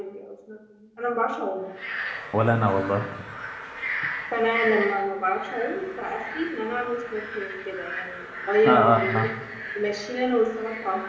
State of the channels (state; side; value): identical; both; correlation 1.00